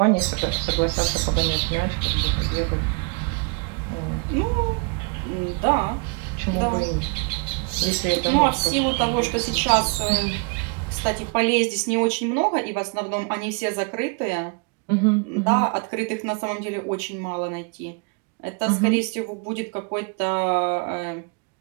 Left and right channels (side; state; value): left; quieter; 33.6 dB